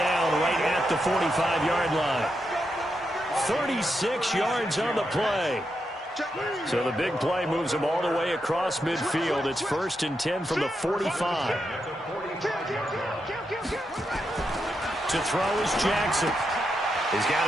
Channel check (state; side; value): normal; both; correlation 0.84